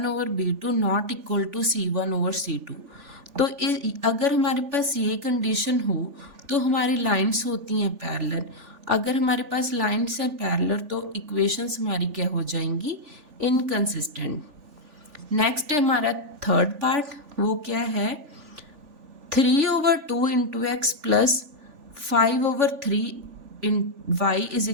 over b2 not equal to c1 over c2. तो अगर हमारे पास ये कंडीशन हो तो हमारी लाइंस होती हैं पैरेलल. अगर हमारे पास लाइंस हैं पैरेलल तो इक्वेशंस हमारी क्या हो जाएंगी? इनकंसिस्टेंट. नेक्स्ट है हमारा थर्ड पार्ट, वो क्या है? 3 over 2 into x plus 5 over 3 in y is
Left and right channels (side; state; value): left; late; 3.4 ms